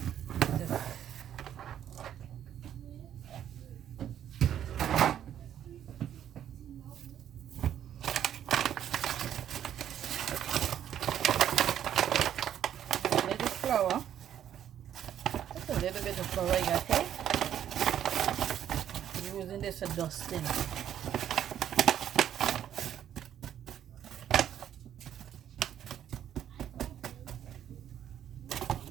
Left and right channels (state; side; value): quieter; left; 10.3 dB